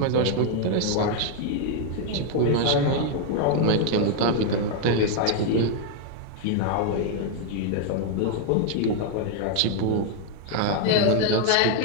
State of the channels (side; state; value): both; different; correlation 0.00